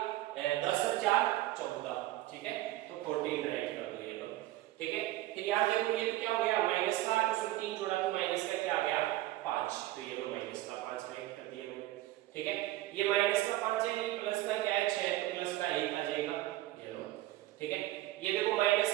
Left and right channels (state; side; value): quieter; left; 16.2 dB